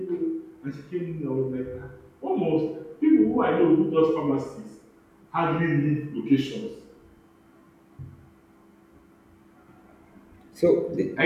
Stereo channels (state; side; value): identical; both; correlation 1.00